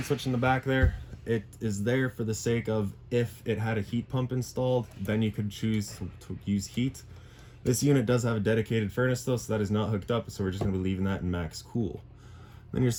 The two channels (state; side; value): identical; both; correlation 1.00